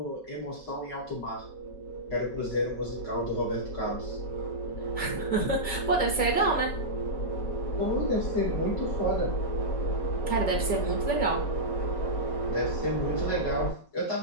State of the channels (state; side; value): late; right; 5.3 ms